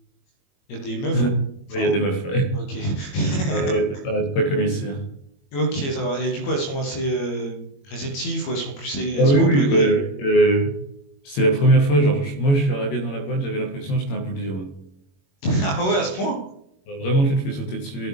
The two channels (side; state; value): right; late; 21 ms